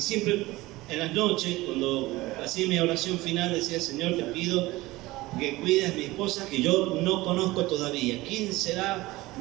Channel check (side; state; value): left; quieter; 19.4 dB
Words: siempre en las noches, cuando hacía mi oración final, decía: Señor, te pido que cuides a mi esposa, que yo no conozco todavía. ¿Quién será